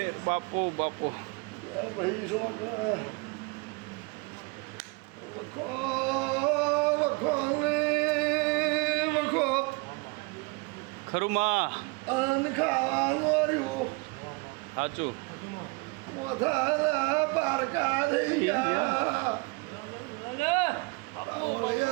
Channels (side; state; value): left; quieter; 28.2 dB